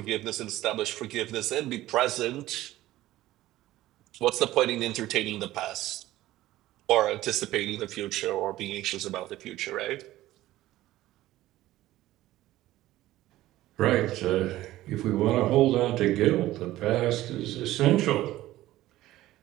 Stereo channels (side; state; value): left; quieter; 15.6 dB